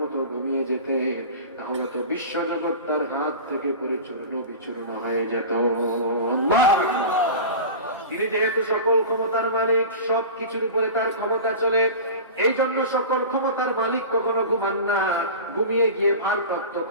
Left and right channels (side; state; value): both; inverted; correlation -0.32